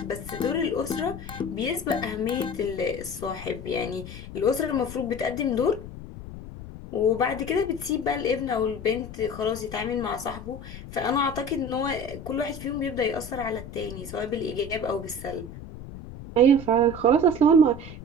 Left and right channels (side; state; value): left; noise; rumble, 12 dB below the sound